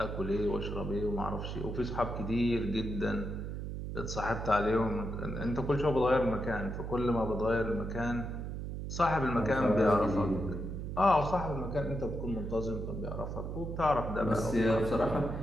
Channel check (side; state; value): right; noise; hum, 5 dB below the sound